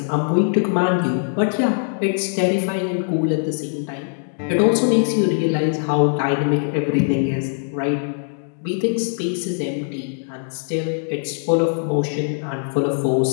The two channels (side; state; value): right; silent; digital silence